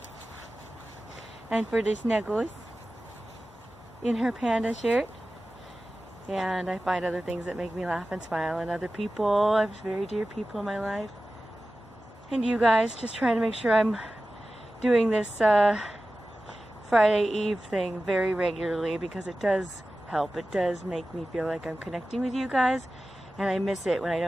And for the snuggles in her panda shirt. And I find other things that make me laugh and smile, and other people. I have very dear people in my life. And you guys, just trying to make sure I'm doing this Friday Eve thing very regularly, because it does help. It does make me feel like I'm connecting with you guys, and I miss it when I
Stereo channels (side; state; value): both; normal; correlation 0.95